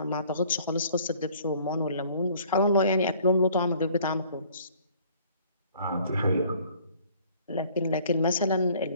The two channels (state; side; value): inverted; both; correlation -0.56